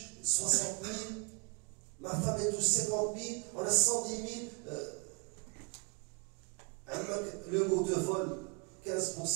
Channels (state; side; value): quieter; left; 31.4 dB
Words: 60 000, ma femme elle touche 50 000, on a 110 000, le mot de vol